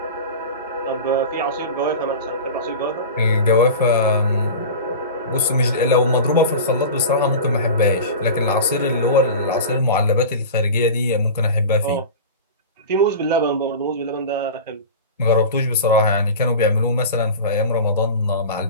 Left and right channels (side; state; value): both; inverted; correlation -0.31